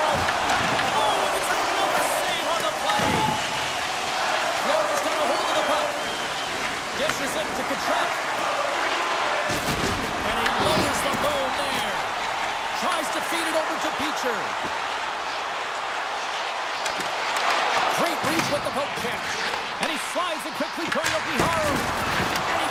Oh, and it's another save on the play. Florida's got a hold of the puck. Dishes it to Tkachuk. And he lowers the boom there. Tries to feed it over to Beecher. Great reach with the poke check. And he slides it quickly toward Yokiharu. And he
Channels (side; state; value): both; identical; correlation 1.00